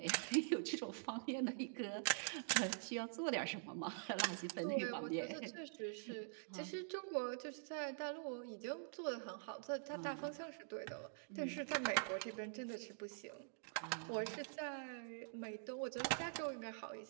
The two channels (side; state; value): left; silent; digital silence